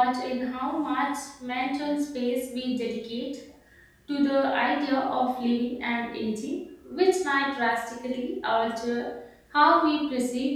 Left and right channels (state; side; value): identical; both; correlation 1.00